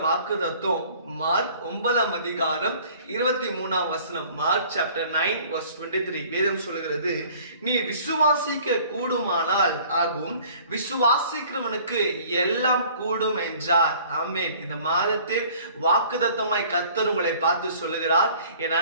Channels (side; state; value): both; inverted; correlation -0.52